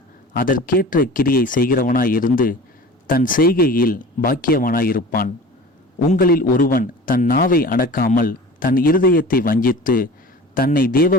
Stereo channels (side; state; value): both; normal; correlation 0.39